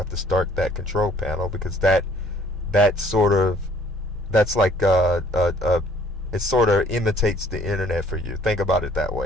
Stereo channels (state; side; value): normal; both; correlation 0.58